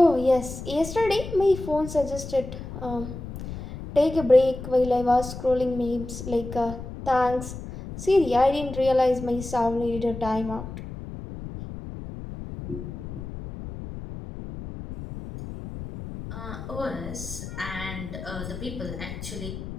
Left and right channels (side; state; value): left; noise; rumble, 10 dB below the sound